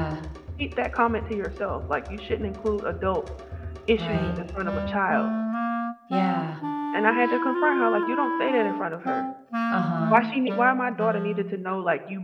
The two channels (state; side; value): identical; both; correlation 1.00